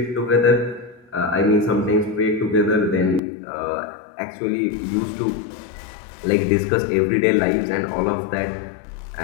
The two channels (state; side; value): drops out; right; at 3.2 s